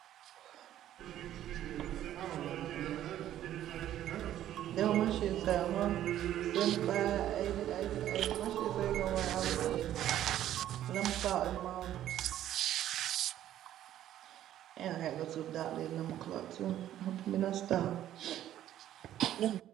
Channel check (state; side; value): quieter; left; 12.1 dB